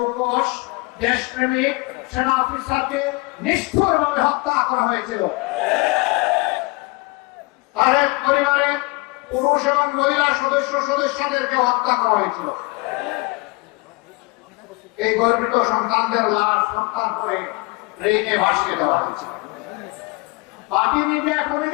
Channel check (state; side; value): quieter; right; 25.4 dB